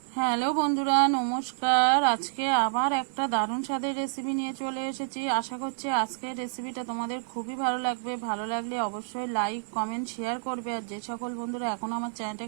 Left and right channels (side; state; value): left; silent; 59 dB below the other